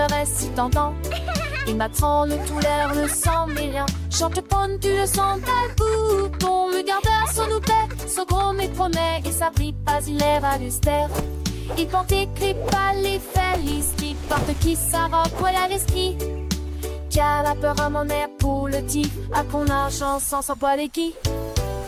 si tentant. Il m'attend le tout l'air, le sang mais rien. Chante ponne, tu le sens, tel bouton. Le gardeur, son oupet, son gros mais promet. Et ça brille pas, il est valustère. Il porte écrit pas les felices. Qui porte qui s'arroque, voilà l'esprit. Qui a la peur à mon air pour le tif. À qu'on argent sans s'en boire les qui.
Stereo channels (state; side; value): identical; both; correlation 1.00